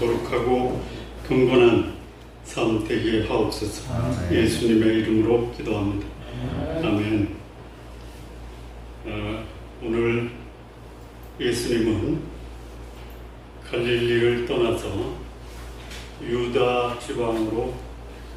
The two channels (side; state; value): both; identical; correlation 1.00